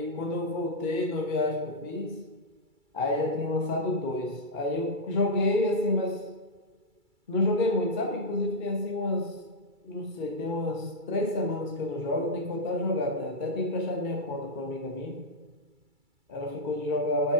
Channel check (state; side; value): late; left; 2.3 ms